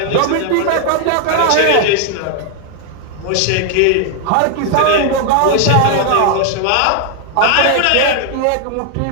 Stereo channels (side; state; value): both; different; correlation 0.00